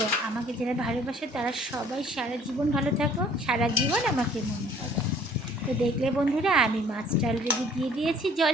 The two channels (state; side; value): normal; both; correlation 0.56